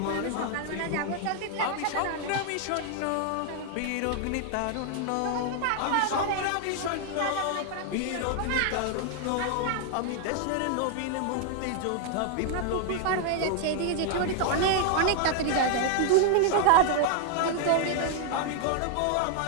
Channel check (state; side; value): different; both; correlation 0.00